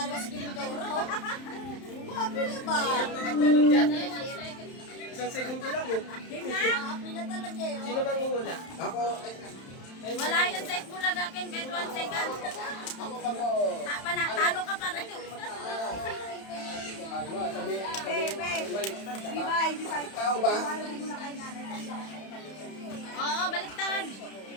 si Kimberly Doro. Maapi na ba? Isang segundo lang eh. Pila talaga eh. Sino bang uhula? Ako, Wala yan sa Bulaga akin kahit 1 second. Talo ka pa rin. tao ba? Oo, baliktad.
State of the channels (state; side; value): late; right; 31 ms